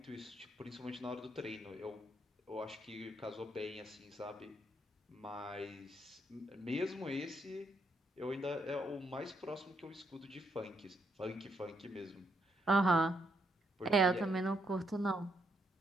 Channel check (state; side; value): normal; both; correlation 0.76